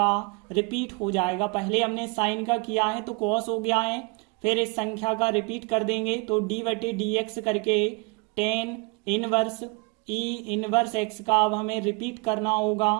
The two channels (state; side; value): quieter; left; 30.0 dB